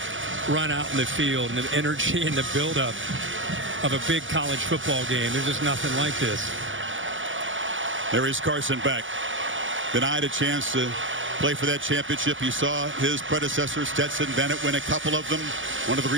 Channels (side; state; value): left; late; 0.57 ms